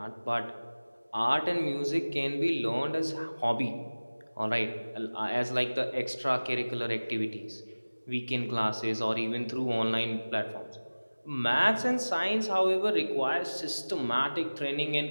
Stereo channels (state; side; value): inverted; both; correlation -1.00